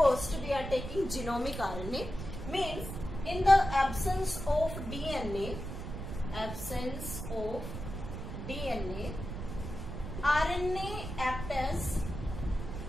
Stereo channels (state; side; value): noise; right; rumble, 7 dB below the sound